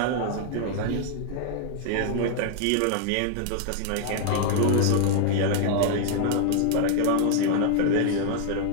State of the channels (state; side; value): different; both; correlation 0.00